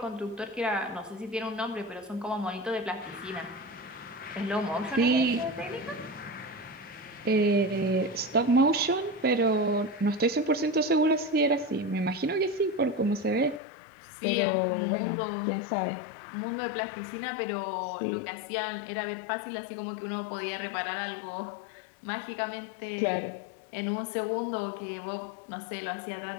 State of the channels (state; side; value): drops out; right; at 13.6 s